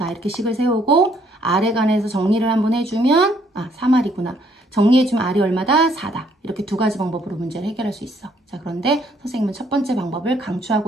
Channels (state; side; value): normal; both; correlation 0.67